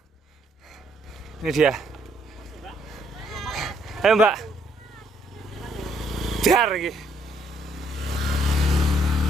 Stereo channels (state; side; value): normal; both; correlation 0.69